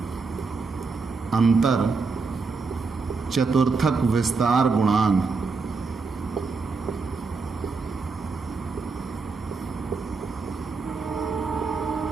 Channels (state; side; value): quieter; left; 4.4 dB